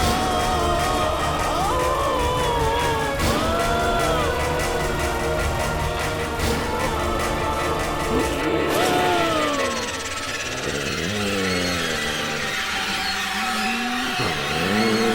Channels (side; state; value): both; identical; correlation 1.00